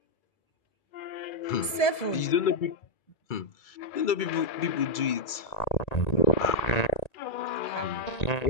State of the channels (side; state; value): right; late; 1.7 ms